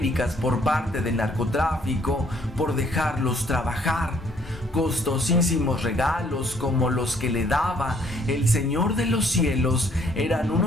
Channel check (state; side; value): normal; both; correlation 0.64